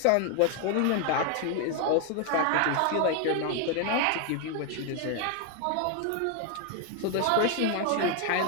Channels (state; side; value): different; both; correlation 0.01